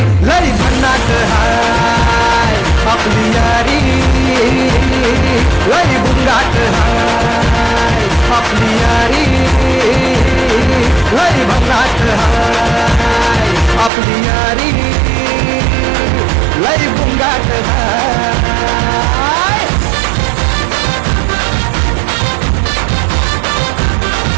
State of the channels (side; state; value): left; drops out; at 13.9 s